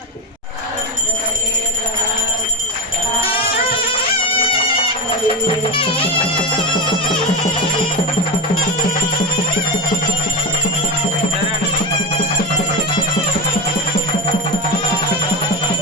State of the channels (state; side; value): normal; both; correlation 0.20